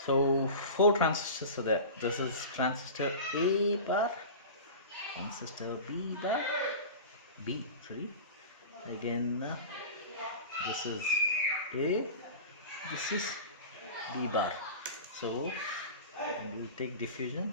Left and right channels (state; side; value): inverted; both; correlation -0.33